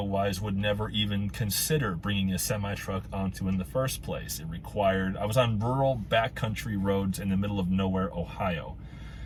would never even consider bringing a semi-truck onto in the first place. I was on rural backcountry roads in the middle of nowhere, Ohio.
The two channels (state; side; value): identical; both; correlation 1.00